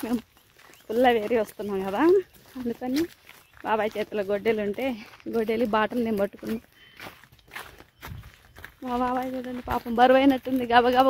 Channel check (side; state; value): both; identical; correlation 1.00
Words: మేము పుల్ల వేరి వస్తున్నాం కదా, అందుకని బాబాయ్ చేతిలో గొడ్డలు ఉంటే గొడ్డలి బాటలు నేను పట్టుకున్నా. మా బాబాయ్ చూడండి పాపం బరువైనట్టుంది,